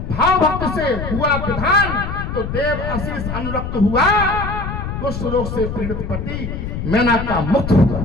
भक्त से हुआ विधान तो देव आशीष अनुरक्त हुआ, कुष्ठ रोग से पीड़ित पति मैना का मुक्त हुआ।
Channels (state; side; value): noise; left; rumble, 5 dB below the sound